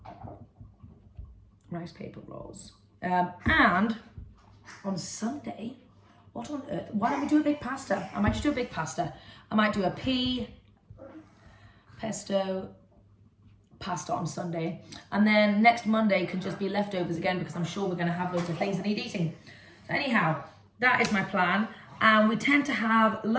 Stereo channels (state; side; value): identical; both; correlation 1.00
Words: Rice paper rolls. And on Sunday, what on earth? Why don't we do a big pasta? I might just do a big pasta. I might do a pesto pasta on Sunday, and then next Monday can just be leftovers again, because I'm sure we're going to have loads of things that need eating. So anyhow, that is my plan. And we tend to have